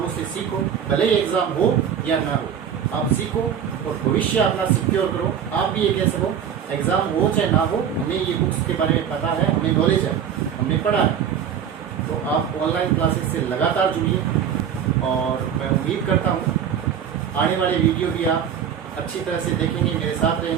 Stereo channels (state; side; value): quieter; left; 8.4 dB